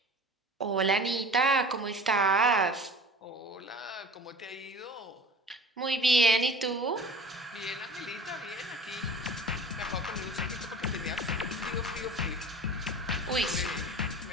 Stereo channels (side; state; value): both; normal; correlation 0.40